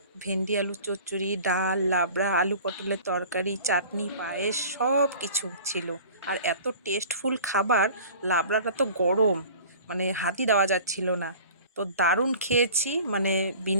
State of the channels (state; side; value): inverted; both; correlation -0.43